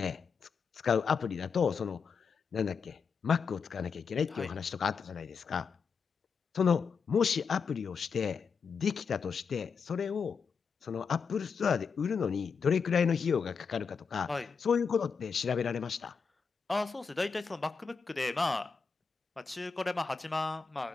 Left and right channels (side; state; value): right; quieter; 5.7 dB